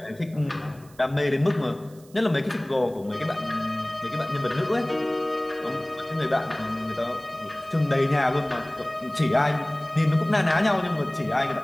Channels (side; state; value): right; noise; hiss, 26 dB below the sound